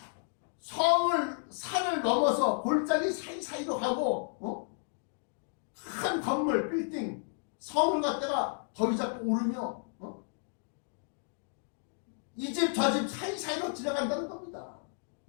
산을 넘어서 골짜기 사이사이로 가고 큰 건물 빌딩 성을 갖다가 더위 잡고 오르며 이 집 저 집 사이사이로 지나간다는 겁니다.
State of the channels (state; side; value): silent; right; 56 dB below the other